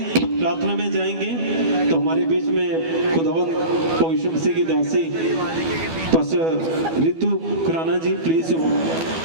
प्रार्थना में जाएंगे। तो हमारे बीच में खुदावंद पवित्र मसीह की दासी पास्टर रितु खुराना जी, प्लीज।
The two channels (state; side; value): late; left; 12 ms